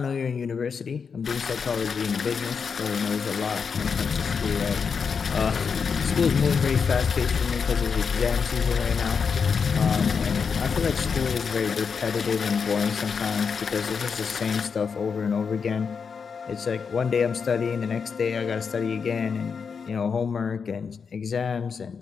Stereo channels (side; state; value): right; quieter; 5.9 dB